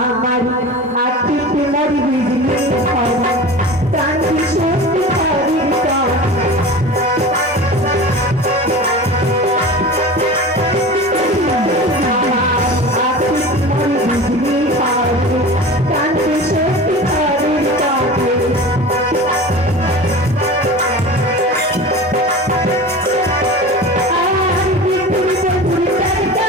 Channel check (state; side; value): normal; both; correlation 0.34